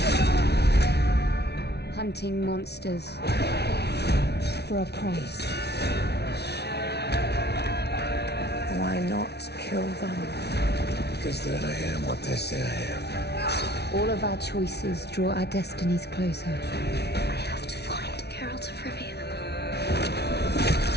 Hunting monsters for a price. Why not kill them? Because then I am what they say I am. All of our choices draw our destinies closer. I have to find Geralt of Rivia.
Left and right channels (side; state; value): right; late; 0.49 ms